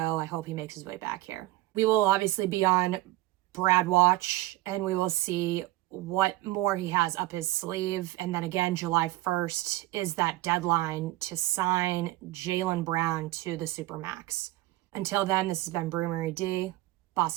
I hope he makes his way back here. We will obviously be on Brad watch, and we will see what more he has up his sleeve. And then again, July 1st is that deadline to sign Jaylen Brown to the Supermax. Until then, this has been Brew Marie D,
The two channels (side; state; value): left; quieter; 17.6 dB